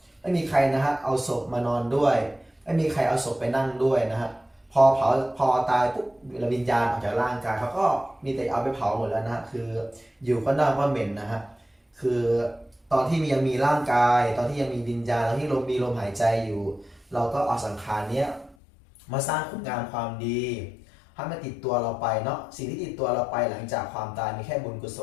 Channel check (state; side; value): drops out; right; at 18.6 s